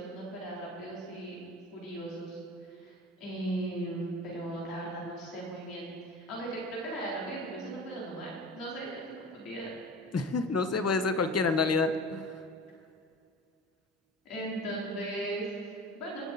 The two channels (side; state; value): both; normal; correlation 0.36